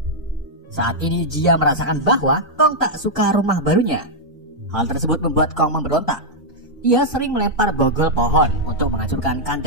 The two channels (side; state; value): both; normal; correlation -0.06